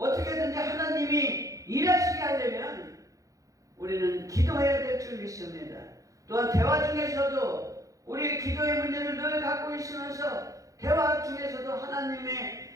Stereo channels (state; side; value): late; left; 0.16 ms